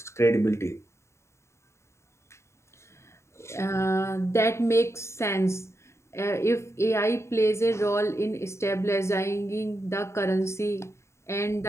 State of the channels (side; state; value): right; late; 0.13 ms